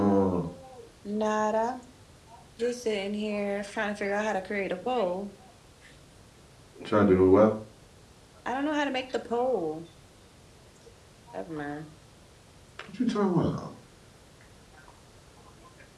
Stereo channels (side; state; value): both; identical; correlation 1.00